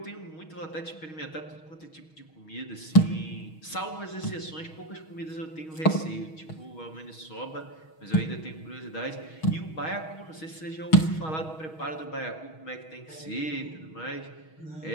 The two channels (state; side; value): late; right; 6.3 ms